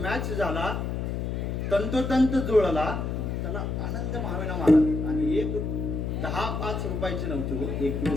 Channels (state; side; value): noise; left; hum, 2 dB below the sound